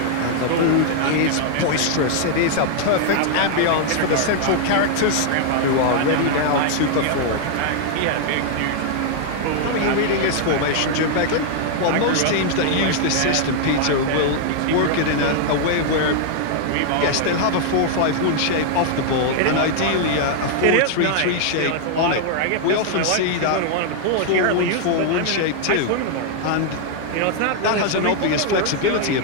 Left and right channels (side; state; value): both; different; correlation 0.00